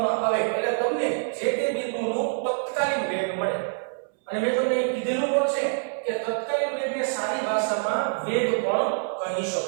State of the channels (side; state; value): left; silent; 61 dB below the other